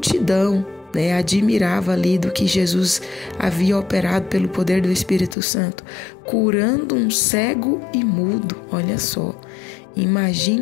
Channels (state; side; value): drops out; right; at 5.4 s